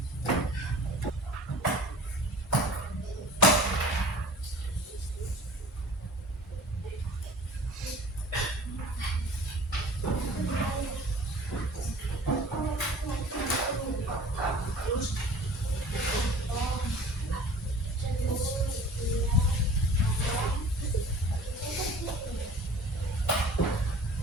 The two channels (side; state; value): both; normal; correlation 0.44